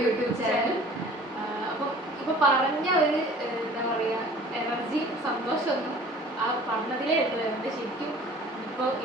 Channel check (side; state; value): both; normal; correlation 0.47